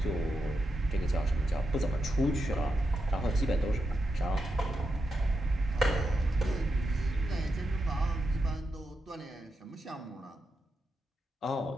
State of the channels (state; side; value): normal; both; correlation 0.86